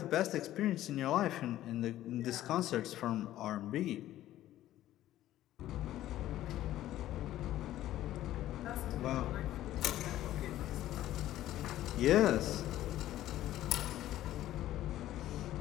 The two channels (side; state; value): right; quieter; 13.8 dB